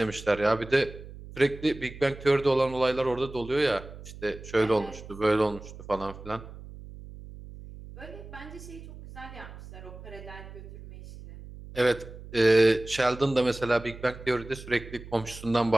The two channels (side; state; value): right; noise; hum, 15 dB below the sound